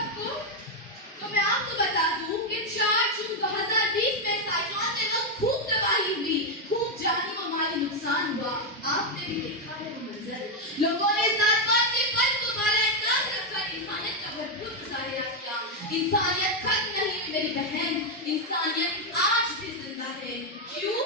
को। तो मैं आपको बता दूं कि 4 जून 2020 में साइक्लोन से वक्त खूब तबाही हुई, खूब जानी व माली नुकसान हुआ। आपने भी देखा है वो मंजर। लोगों ने जात-पात के फर्क को बाला-ए-ताज रखकर इंसानियत का भरपूर मुजाहिरा किया। इंसानियत खत्म नहीं हुई मेरी बहन, इंसानियत आज भी जिंदा है। क्यों?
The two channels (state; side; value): normal; both; correlation 0.03